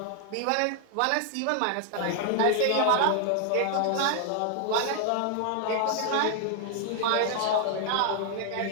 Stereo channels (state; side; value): different; both; correlation 0.00